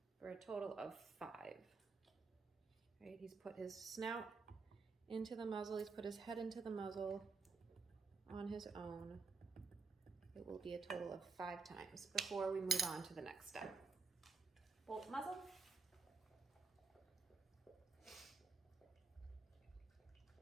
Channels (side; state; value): left; quieter; 4.5 dB